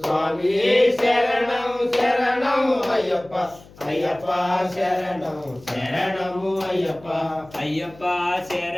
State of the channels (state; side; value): noise; left; hum, 23 dB below the sound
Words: శరణం శరణం అయ్యప్ప అయ్యప్ప శరణం శరణము అయ్యప్ప అయ్యప్ప